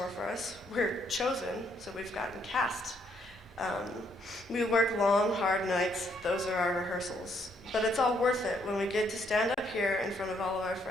for us. We're chosen, so we've gotten cast. We work long, hard nights. Those are our rehearsals. But it's all worth it when we get to stand up here in front of all of our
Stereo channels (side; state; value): both; normal; correlation 0.71